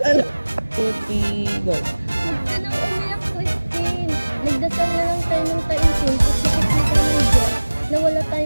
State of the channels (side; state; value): both; inverted; correlation -1.00